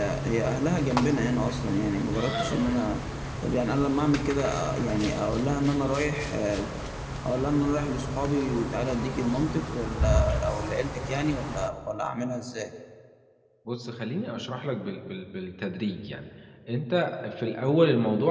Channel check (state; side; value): identical; both; correlation 1.00